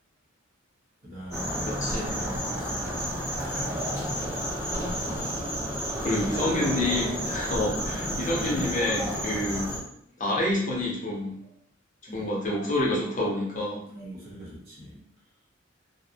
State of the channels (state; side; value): normal; both; correlation 0.45